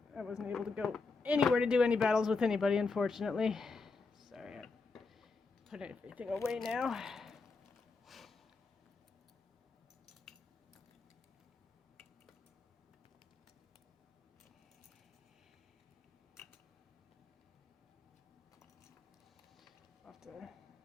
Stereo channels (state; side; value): quieter; right; 4.2 dB